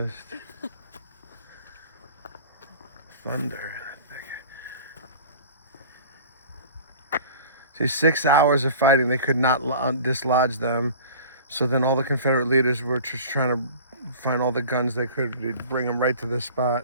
Thunder. See, 6 hours of fighting, they could not dislodge them. So then all the Confederate leaders were just trying to find all the guns they could. They'd bring them right to this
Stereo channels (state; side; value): inverted; both; correlation -0.42